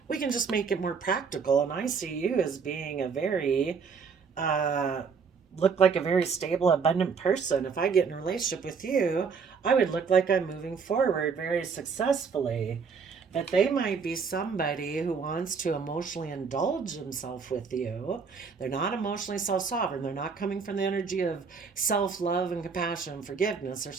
We can just make it more practical. And I see you as being a very, look like a very stable, abundant person. If I get in a relationship with you, I would look like I'm moving forward very successfully. But they might be somebody who wants to emotionally indulge themselves with you. They're not emotionally self sovereign. They're not coming from the energy of self love and compassion and forgiveness. They're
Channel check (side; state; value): left; quieter; 5.6 dB